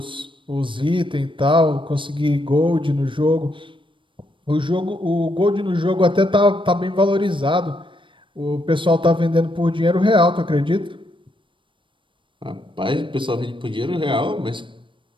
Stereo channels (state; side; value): late; left; 0.24 ms